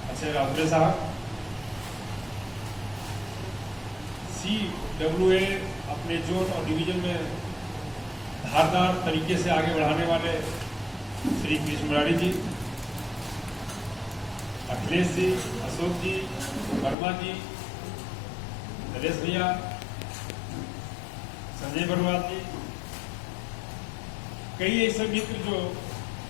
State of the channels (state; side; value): drops out; right; at 16.9 s